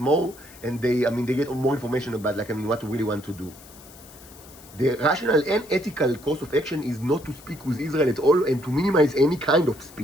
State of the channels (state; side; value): noise; left; hiss, 21 dB below the sound